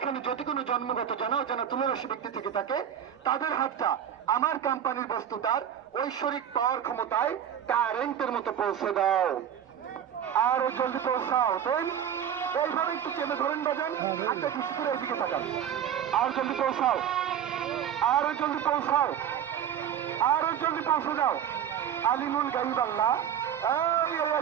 যদি কোনো জন্মগত জানা অজানা তুলারাশি ব্যক্তি থেকে থাকে, তাদের হাতটা আমার কোম্পানির বস্তুটার ঐশ্বরিক পাওয়ার ক্ষমতায় কারেন্টের মতো পৌঁছে দাও। আরো জলদি পৌঁছাও। দেন এইভাবে একটু চেপে ধরেন, বাজান, হাতটা ঠেসে ধরে এইদিকে তাকান। আর জলদি পৌঁছাও, আরো জলদি পৌঁছাও, আরো জলদি পৌঁছে যাও। আলিমুল গাইব আল্লাহ, এই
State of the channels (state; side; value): quieter; left; 9.2 dB